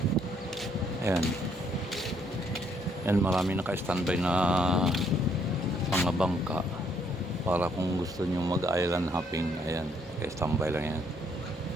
Ayan. And marami naka-standby na mga bangka para kung gusto nyo mag-island hopping. Ayan, naka-standby lang yan.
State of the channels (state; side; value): normal; both; correlation 0.69